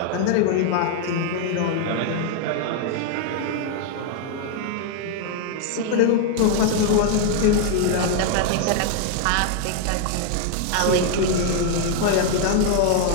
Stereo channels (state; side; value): different; both; correlation 0.00